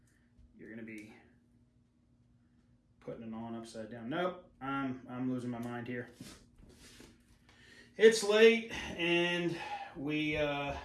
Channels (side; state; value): both; identical; correlation 1.00